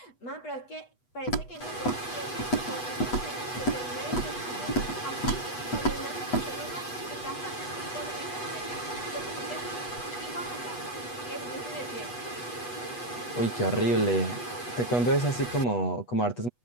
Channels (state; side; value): late; right; 8.2 ms